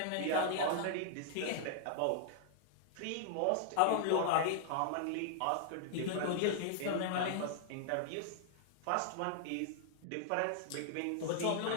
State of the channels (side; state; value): both; different; correlation -0.01